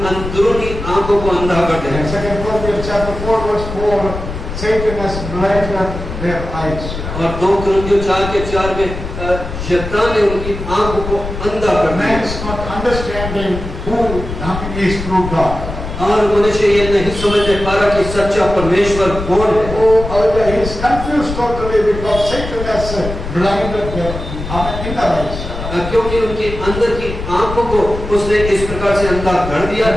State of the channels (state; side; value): noise; left; rumble, 7 dB below the sound